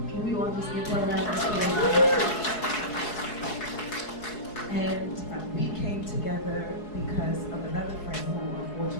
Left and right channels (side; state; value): right; late; 4.7 ms